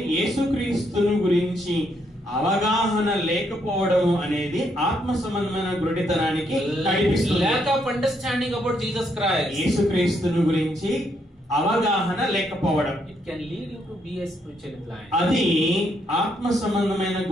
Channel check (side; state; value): both; normal; correlation 0.75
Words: యేసుక్రీస్తును గురించి అవగాహన లేకపోవడం అనేది ఆత్మ సంబంధమైన గుడ్డితనానికి నడిపిస్తుంది. Lack of understanding about Jesus Christ. యేసుక్రీస్తును గురించి అవగాహన లేకపోవడం. It can lead you to be a spiritually blind. అది ఆత్మ సంబంధమైన